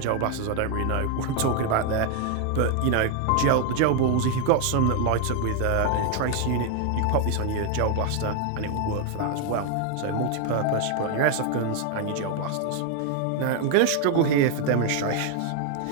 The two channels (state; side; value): different; both; correlation 0.01